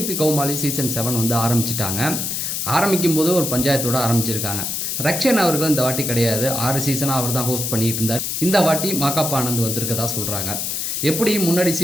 Comali season 7 வந்து ஆரம்பிச்சிட்டாங்க. ஆரம்பிக்கும் போது ஒரு பஞ்சாயத்தோடு ஆரம்பிச்சிருக்காங்க. ரக்ஷன் அவர்கள் இந்த வாட்டி கிடையாது, 6 சீசனாக அவர் தான் ஹோஸ்ட் பண்ணிட்டு இருந்தார். இந்த வாட்டி மாகாப்பா ஆனந்த் வந்திருக்கதா சொல்கிறாங்க. எப்படி முன்னாடி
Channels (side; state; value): left; noise; hiss, 2 dB below the sound